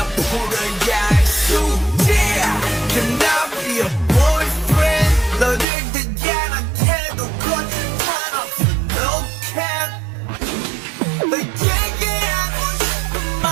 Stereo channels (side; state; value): left; drops out; at 5.7 s